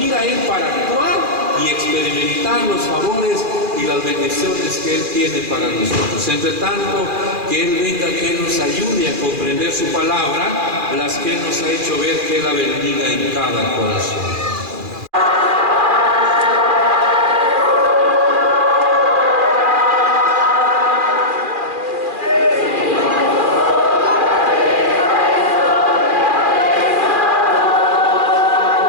Él, para actuar y experimentar los favores y las bendiciones que Él tiene para nosotros. Entre tanto, que Él venga, que Él nos ayude a comprender su palabra, las que Él nos ha hecho ver, que Él la bendiga en cada corazón.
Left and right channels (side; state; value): left; late; 2.4 ms